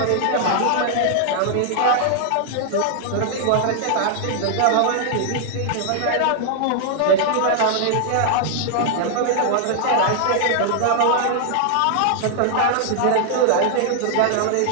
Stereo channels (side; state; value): both; different; correlation 0.00